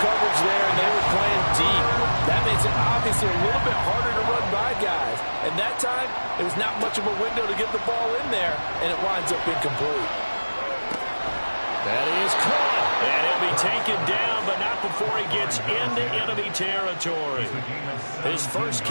coverage there, and they were playing deep. That makes it obviously a little bit harder to run by guys. And that time, it was not much of a window to get the ball in there, and it winds up incomplete. That is caught. And he'll be taken down, but not before he gets into enemy territory. His first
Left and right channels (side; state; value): both; inverted; correlation -1.00